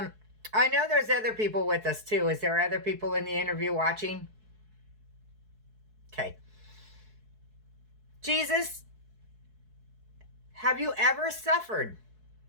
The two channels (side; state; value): left; late; 4.7 ms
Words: I know there's other people with us too. Is there other people in the interview watching? Okay. Jesus, have you ever suffered?